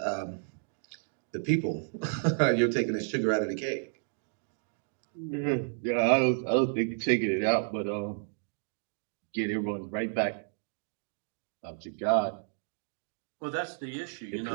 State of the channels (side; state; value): left; silent; digital silence